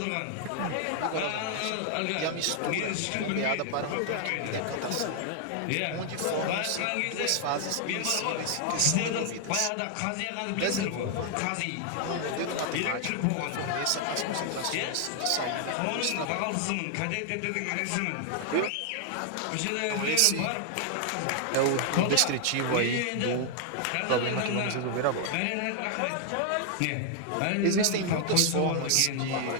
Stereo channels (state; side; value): different; both; correlation 0.00